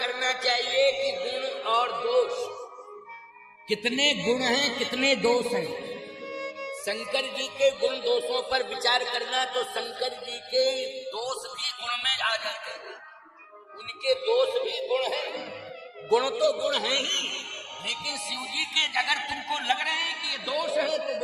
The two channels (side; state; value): both; identical; correlation 1.00